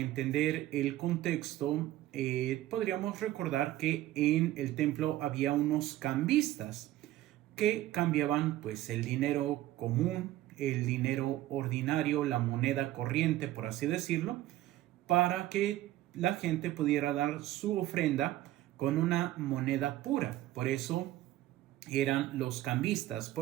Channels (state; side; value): quieter; left; 15.0 dB